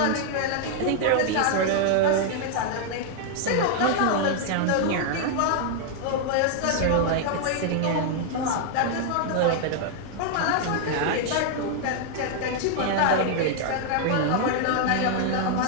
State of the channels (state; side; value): different; both; correlation 0.00